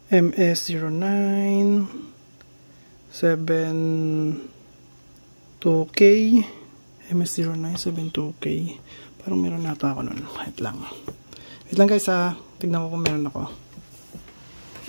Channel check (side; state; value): both; inverted; correlation -1.00